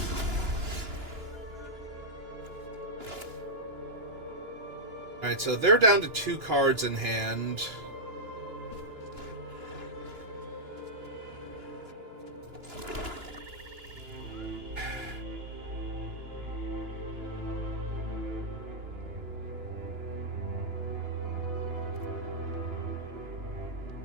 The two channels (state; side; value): late; left; 2.9 ms